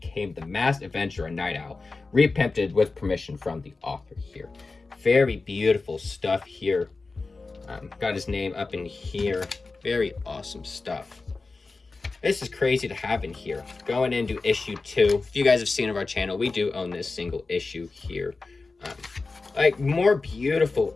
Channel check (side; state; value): right; quieter; 3.8 dB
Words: the masked adventurer and Night Owl, reprinted with permission from the author here. Very beautiful stuff here. Got his name up in here. Very awesome stuff. This is crazy to have in here. Going into issue 2. If you guys have seen of our channel, we do own this single issue here. Like, more beautiful